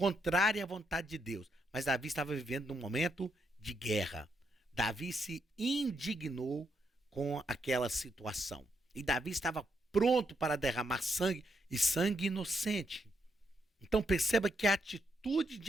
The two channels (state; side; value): normal; both; correlation 0.79